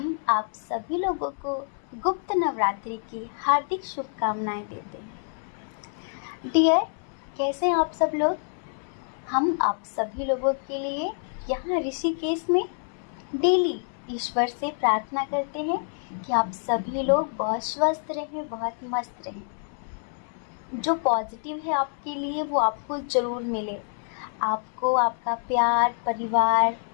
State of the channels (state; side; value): silent; right; 60 dB below the other